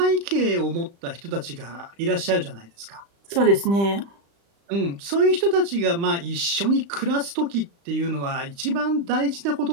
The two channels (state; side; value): late; left; 35 ms